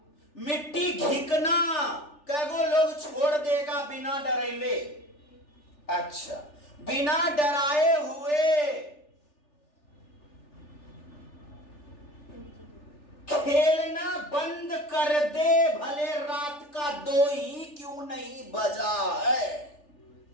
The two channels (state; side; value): late; right; 3.4 ms